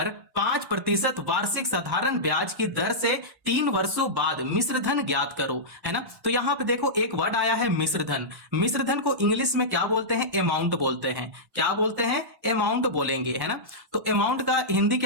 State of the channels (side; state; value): left; late; 1.1 ms